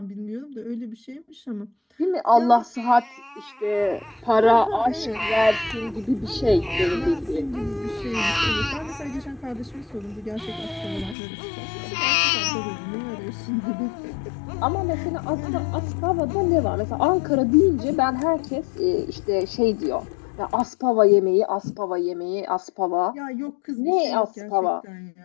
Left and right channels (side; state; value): right; drops out; at 11.2 s